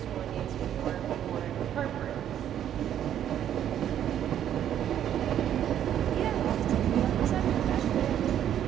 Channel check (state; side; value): quieter; left; 10.4 dB